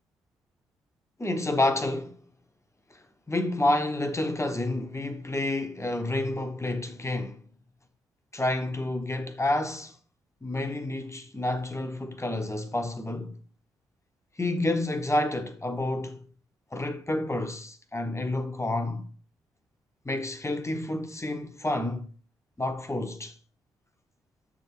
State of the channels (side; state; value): both; normal; correlation 0.81